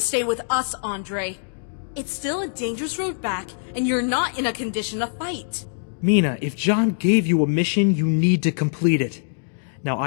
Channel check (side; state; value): right; silent; digital silence